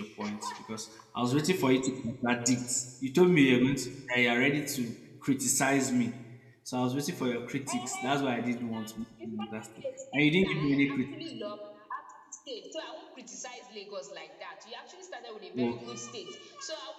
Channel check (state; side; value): identical; both; correlation 1.00